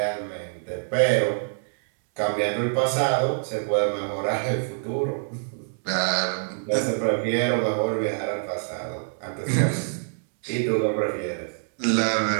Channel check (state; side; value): silent; left; 61 dB below the other